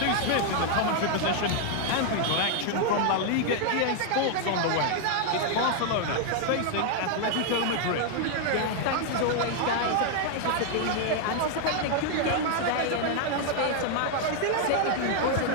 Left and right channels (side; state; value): both; different; correlation 0.00